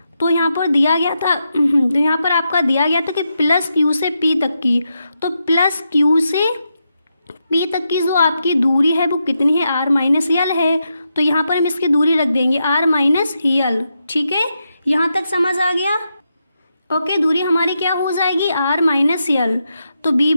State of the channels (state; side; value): inverted; both; correlation -0.85